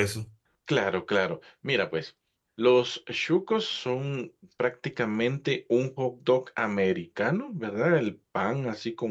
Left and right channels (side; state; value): both; identical; correlation 1.00